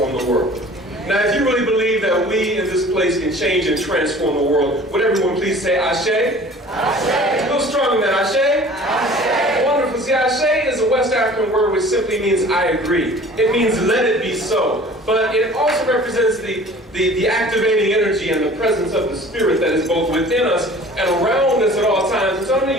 the world. Now, if you really believe that we in this place can change and transform the world, would everyone please say Ashe? Ashe. A little stronger than that. Ashe? Ashe. Wonderful. See, Ashe is a West African word which simply means I agree. It means let it be so. But it also represents the activating energy and the presence of the Spirit that is both within us and around us at all times. And so I'm going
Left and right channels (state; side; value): normal; both; correlation 0.47